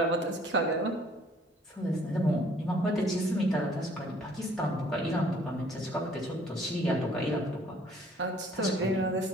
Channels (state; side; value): normal; both; correlation 0.59